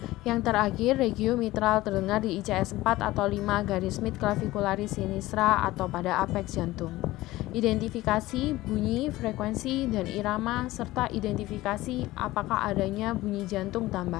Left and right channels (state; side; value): quieter; right; 17.7 dB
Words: Yang terakhir, regio mitral terdengar di ICS 4 atau 5 garis midclavicularis sinistra atau pada apex jantung. Identifikasi, bunyi, frekuensi, dan irama, serta identifikasi apakah adanya bunyi jantung